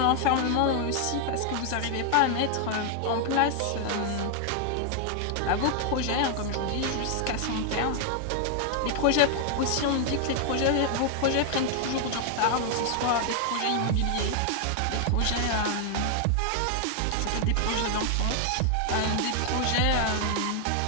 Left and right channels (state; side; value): different; both; correlation 0.00